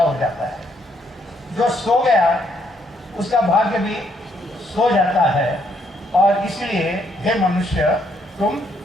जाता है, जो सो गया उसका भाग्य भी सो जाता है। और इसलिए हे मनुष्य, तुम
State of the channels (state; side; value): normal; both; correlation 0.72